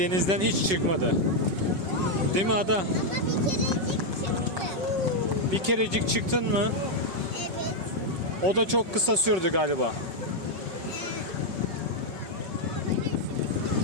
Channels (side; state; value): left; late; 5.3 ms